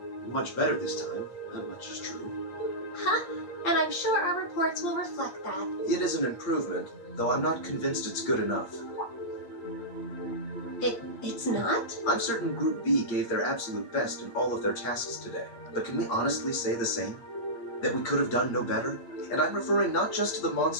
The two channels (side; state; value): right; late; 8.7 ms